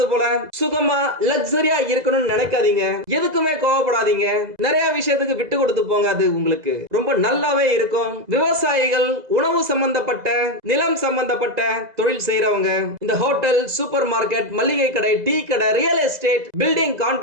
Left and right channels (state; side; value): late; left; 2.0 ms